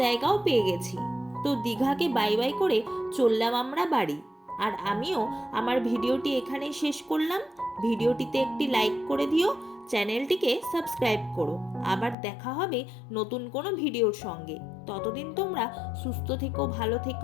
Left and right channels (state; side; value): drops out; right; at 12.2 s